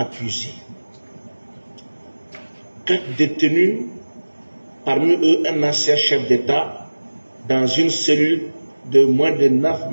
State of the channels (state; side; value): inverted; both; correlation -1.00